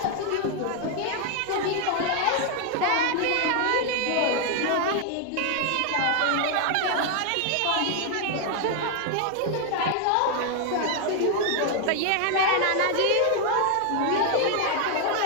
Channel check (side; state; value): both; different; correlation 0.00